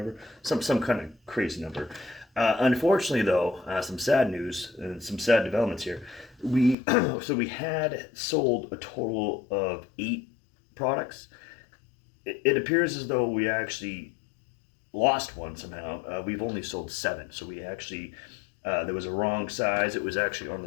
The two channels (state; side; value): drops out; right; at 6.8 s